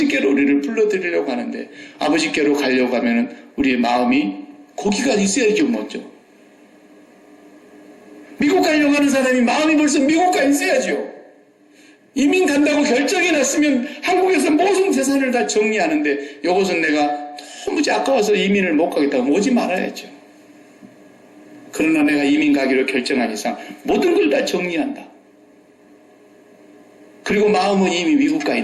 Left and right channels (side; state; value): both; identical; correlation 1.00